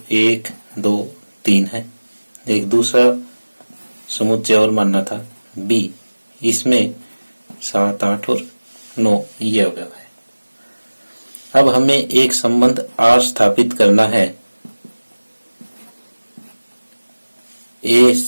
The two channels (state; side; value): inverted; both; correlation -1.00